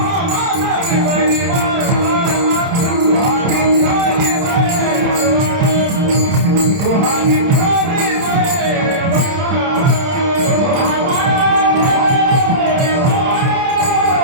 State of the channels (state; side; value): late; left; 30 ms